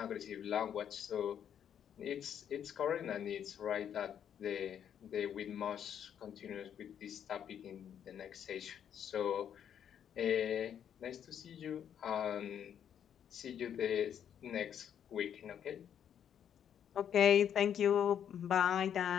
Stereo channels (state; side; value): quieter; right; 9.0 dB